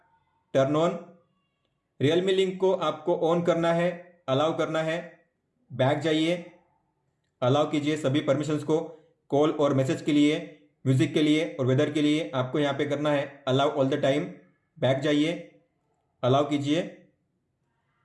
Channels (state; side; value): identical; both; correlation 1.00